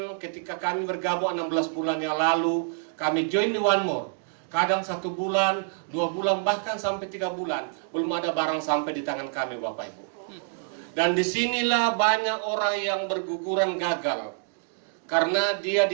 ketika kami bergabung 16 bulan yang lalu, kami join di One More. Kadang 1 bulan, 2 bulan, bahkan sampai 3 bulan belum ada barang sampai di tangan kami Bapak Ibu. Dan disinilah banyak orang yang berguguran gagal karena dia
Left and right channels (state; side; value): silent; left; digital silence